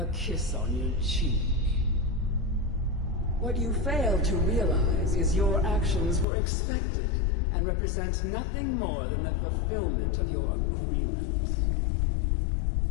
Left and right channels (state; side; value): drops out; right; at 6.2 s